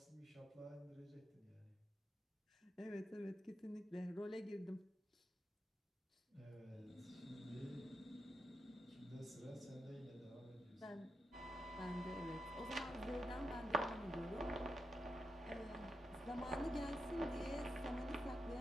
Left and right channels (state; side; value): normal; both; correlation 0.86